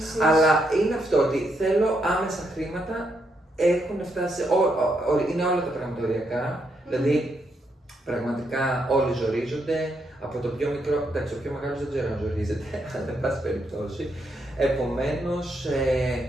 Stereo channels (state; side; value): normal; both; correlation 0.78